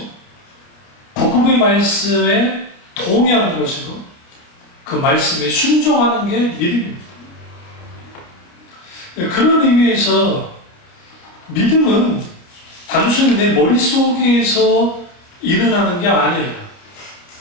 복음의 말씀에 동의하는 것이고 그 말씀에 순종하는 게 믿음입니다. 그런 의미에서 믿음은 단순히 내 머릿속에서 일어나는 게 아니에요.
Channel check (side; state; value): right; late; 29 ms